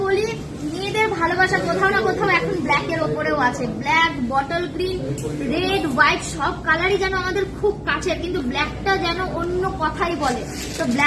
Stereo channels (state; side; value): identical; both; correlation 1.00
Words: বলি মেয়েদের ভালোবাসা কোথাও না কোথাও এখন ব্ল্যাক এর ওপরেও আছে। Black, bottle green, red, white সব কালারই যেন আমাদের খুব কাছের, কিন্তু ব্ল্যাকটা যেন অন্য কথাই বলে। তো